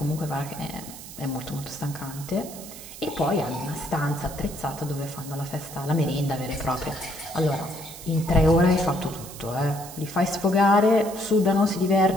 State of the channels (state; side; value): noise; right; hiss, 14 dB below the sound